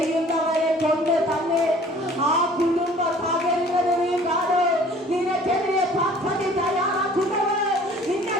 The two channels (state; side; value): normal; both; correlation 0.51